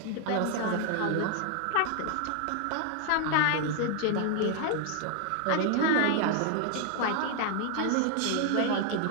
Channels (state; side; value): different; both; correlation 0.00